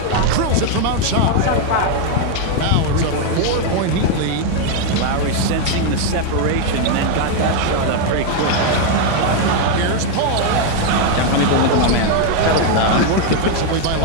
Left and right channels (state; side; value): different; both; correlation 0.01